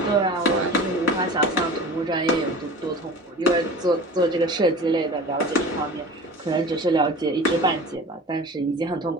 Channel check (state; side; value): normal; both; correlation 0.38